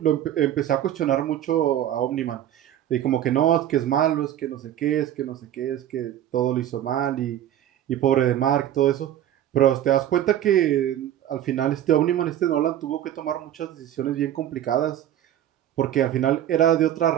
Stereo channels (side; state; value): left; quieter; 11.5 dB